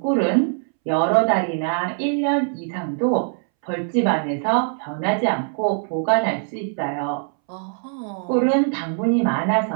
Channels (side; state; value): left; silent; 64 dB below the other